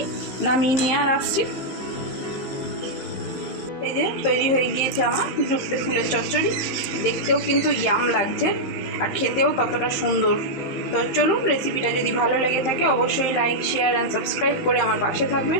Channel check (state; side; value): late; right; 15 ms